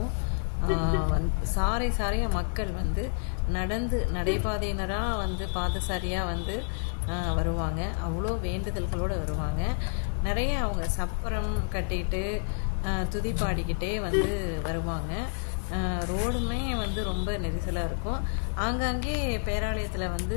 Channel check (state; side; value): silent; right; 59 dB below the other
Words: சாரையாக மக்கள் வந்து நடைபாதையினராக வந்து பாதசாரியாக வந்து வருவாங்க. அவ்வளோ வேண்டுதல்களோடு வருவாங்க. நிறைய அவங்க சப்பரம் கட்டிட்டு துதி பாடிக்கிட்டே வந்து வருவாங்க. ரோடுமே வந்து ரொம்ப நெரிசலாக இருக்கும். ஆங்காங்கே பேராலயத்தில் வந்து